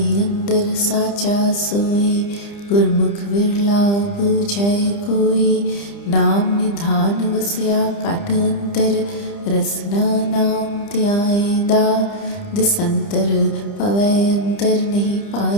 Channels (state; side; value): late; right; 30 ms